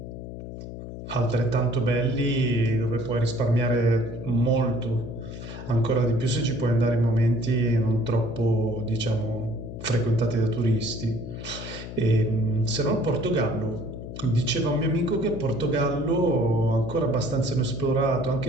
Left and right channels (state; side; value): noise; left; hum, 10 dB below the sound